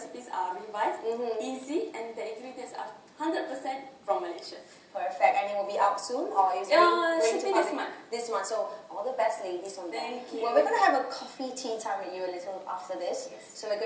are revised, easy, and the ingredients are 100% from Malaysia. Perfect. And it will be out soon, or is it should be this month? This month. So all the best, ladies, on that. Thank you. Well, we're going to have a coffee tea time with you a little after this. So we're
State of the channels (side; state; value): both; identical; correlation 1.00